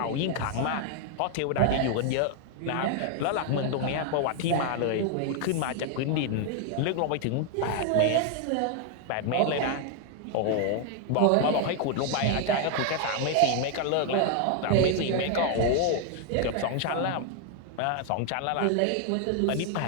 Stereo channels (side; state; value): both; different; correlation 0.00